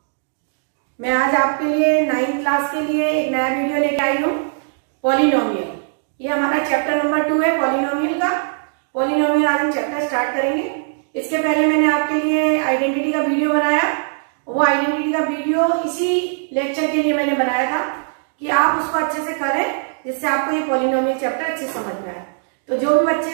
मैं आज आपके लिए 9th क्लास के लिए एक नया वीडियो लेके आई हूँ। पॉलिनोमियल, ये हमारा चैप्टर नंबर 2 है पॉलिनोमियल का। पॉलिनोमियल आज हम चैप्टर स्टार्ट करेंगे। इसके पहले मैंने आपके लिए आइडेंटिटी का वीडियो बनाया। वो आइडेंटिटी का वीडियो इसी लेक्चर के लिए मैंने बनाया था कि आप उसको अच्छे से करें, जिससे आपको ये पॉलिनोमियल चैप्टर अच्छे समझ में आए। तो जो भी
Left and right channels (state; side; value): silent; left; digital silence